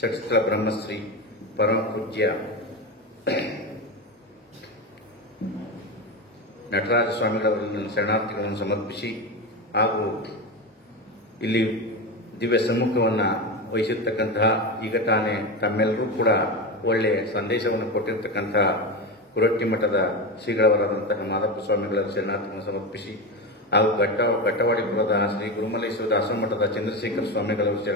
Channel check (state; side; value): normal; both; correlation 0.19